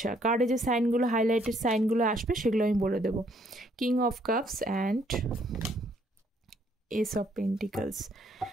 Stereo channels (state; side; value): normal; both; correlation 0.67